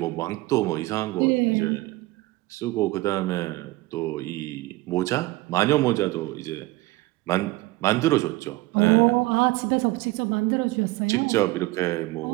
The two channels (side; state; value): left; quieter; 20.0 dB